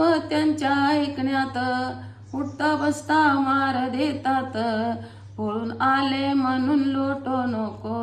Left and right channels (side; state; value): both; identical; correlation 1.00